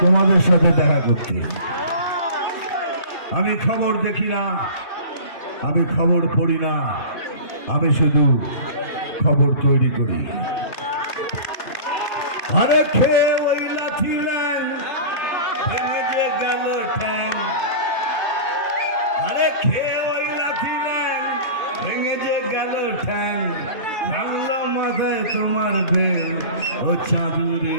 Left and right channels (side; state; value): right; late; 2.6 ms